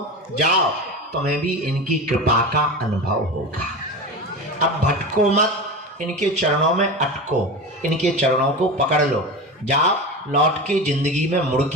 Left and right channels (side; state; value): both; normal; correlation 0.26